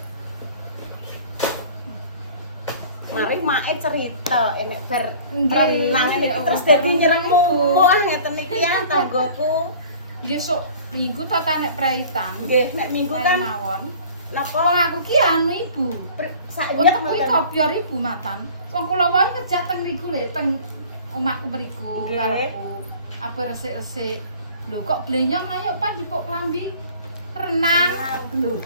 Mari mae cerita enek ber renang niki terus dadi nyeremu. Wah, ngeten niki ya tanggoku. Nggih sok minggu ta nek praitan. Nggih, nek minggu kan mawon. napa Wong aku ki anu Ibu. saiki Wong kuwi kopior Ibu matan. Wong kula wae ngejak teng riku lho, teng omahku mriku Nggih. karepku. Apa resik-resik. Lho kok blenyong ayo Pak dipuk klambi renang. Lho.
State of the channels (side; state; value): both; inverted; correlation -0.46